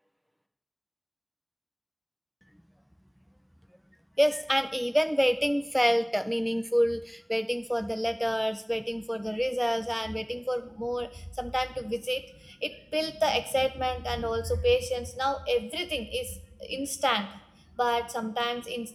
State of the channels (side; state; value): both; identical; correlation 1.00